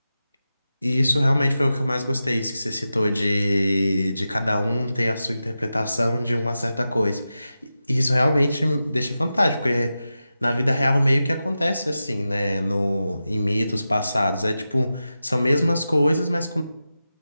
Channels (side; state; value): both; inverted; correlation -0.92